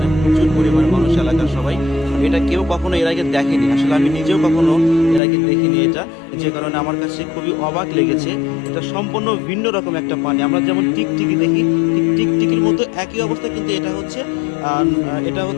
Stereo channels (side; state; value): right; drops out; at 5.2 s